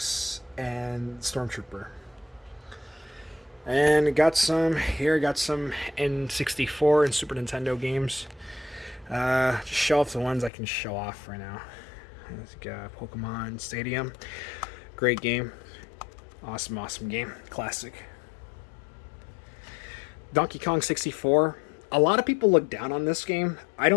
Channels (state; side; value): drops out; right; at 10.5 s